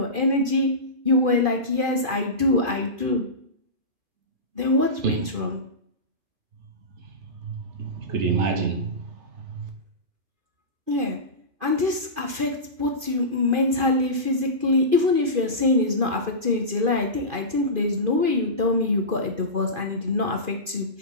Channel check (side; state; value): left; late; 2.5 ms